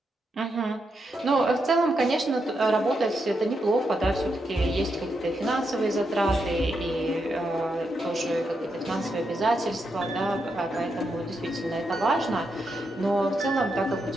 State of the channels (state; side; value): normal; both; correlation 0.83